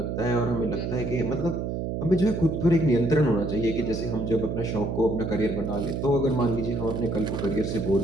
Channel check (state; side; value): noise; right; hum, 3 dB below the sound